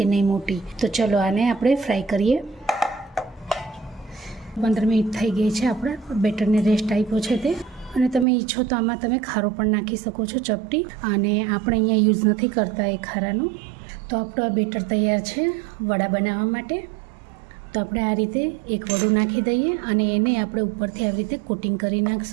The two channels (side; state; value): left; drops out; at 8.2 s